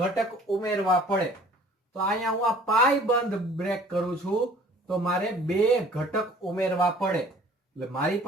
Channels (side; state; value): both; normal; correlation 0.51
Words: ઉમેરવા પડે તો અહીંયા હું આ પાઈ બંધ બ્રેક કરું છું તો મારે બે ઘટક ઉમેરવા પડે એટલે મારી